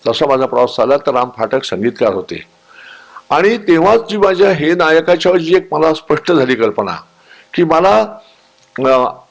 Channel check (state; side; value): identical; both; correlation 1.00